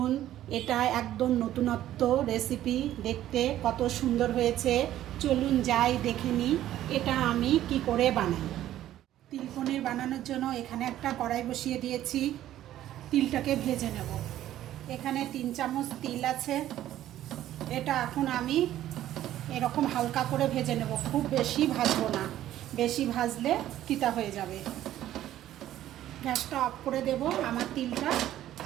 এটা একদম নতুনত্ব রেসিপি, দেখতে কত সুন্দর হয়েছে। চলুন যাই দেখে নিই এটা আমি কি করে বানাই। তিল পনির বানানোর জন্য এখানে একটা কড়াই বসিয়ে দিয়েছি, তিলটাকে ভেজে নেব। এখানে 3 চামচ তিল আছে, এটা এখন আমি এরকম হালকা করে ভেজে নেব, খুব বেশি ভাজবো না, বেশি ভাজলে তিতা হয়ে যাবে। গ্যাসটা অফ করে দেব। আমার তিলটা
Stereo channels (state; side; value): quieter; left; 12.9 dB